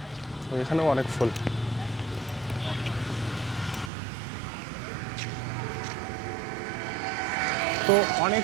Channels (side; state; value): left; drops out; at 3.9 s